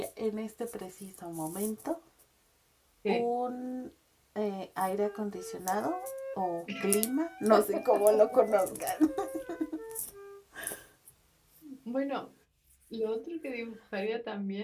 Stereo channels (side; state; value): both; identical; correlation 1.00